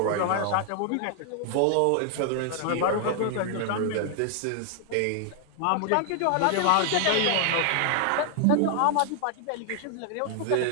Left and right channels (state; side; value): different; both; correlation 0.00